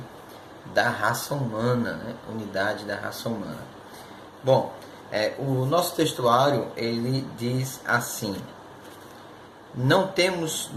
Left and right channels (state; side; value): identical; both; correlation 1.00